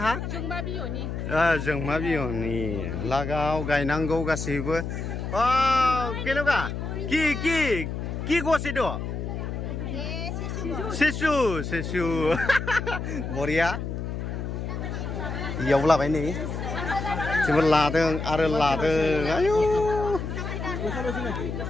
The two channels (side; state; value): left; noise; hum, 5 dB below the sound